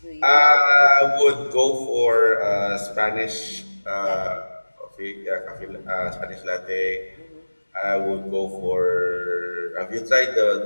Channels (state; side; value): inverted; both; correlation -1.00